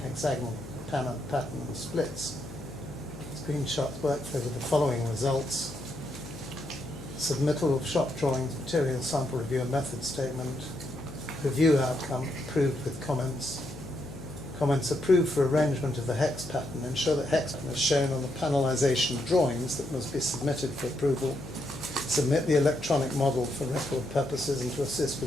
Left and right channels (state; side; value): noise; left; hum, 14 dB below the sound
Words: hexagonal pattern and splits. Screenshots workflow with the following results. Submittal of shop drawings, material sample review and method statement. Review outcome approved with comments. Comments approved for arrangement of the hex pattern. Ensure that hex pattern is shown on the panelization drawings that must be submitted for approval. Submit the electronic model for record purposes and to assist